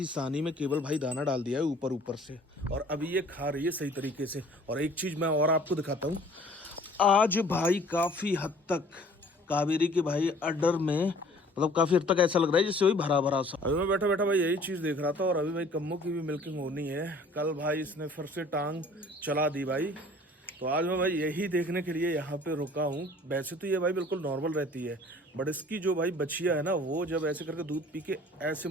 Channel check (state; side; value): normal; both; correlation 0.52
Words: सानी में केवल भाई दाना डाल दिया है ऊपर ऊपर से, और अभी ये खा रही है सही तरीके से। और एक चीज मैं और आपको दिखाता हूँ, आज भाई काफी हद तक कावेरी के भाई अडर में मतलब काफी हद तक ऐसा लग रहा है जैसे वही भरा भरा सा। अभी मैं बैठा बैठा भाई यही चीज देख रहा था, और अभी भाई कम्मो की भी मिल्किंग होनी है। कल भाई इसने फिर से टांग चला दी भाई, तो आज मैं भाई यही देखने के लिए यहाँ पे रुका हूँ। वैसे तो ये भाई बिल्कुल नॉर्मल रहती है, बट इसकी जो भाई बच्चिया है ना, वो जब ऐसे करके दूध पी के ऐसे